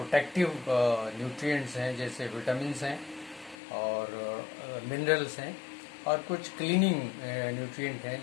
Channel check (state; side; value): drops out; right; at 3.6 s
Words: न्यूट्रिएंट्स हैं जैसे विटामिन्स हैं और मिनरल्स हैं, और कुछ क्लीनिंग न्यूट्रिएंट